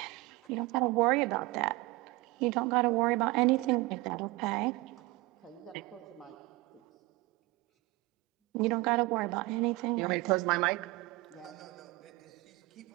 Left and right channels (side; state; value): left; quieter; 22.2 dB